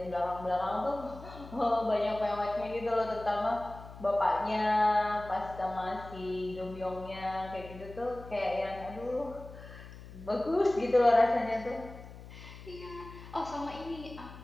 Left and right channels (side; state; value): left; noise; hum, 15 dB below the sound